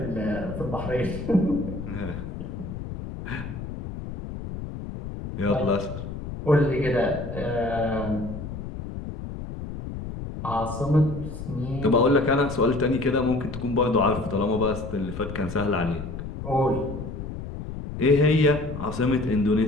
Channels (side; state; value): left; noise; rumble, 8 dB below the sound